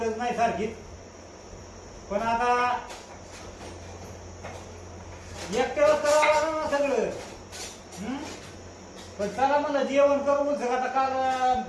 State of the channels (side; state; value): both; identical; correlation 1.00